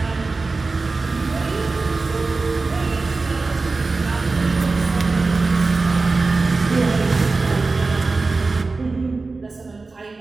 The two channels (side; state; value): left; quieter; 3.8 dB